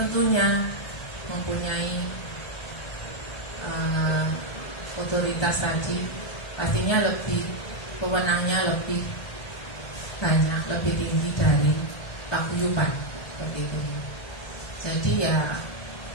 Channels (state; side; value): late; right; 1.3 ms